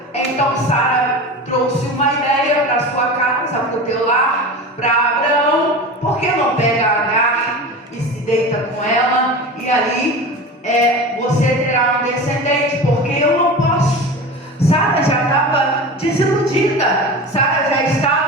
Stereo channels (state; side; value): normal; both; correlation 0.31